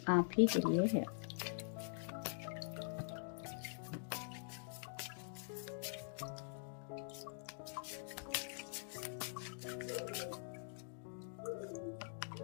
आप ही के लिए है।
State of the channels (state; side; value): silent; right; digital silence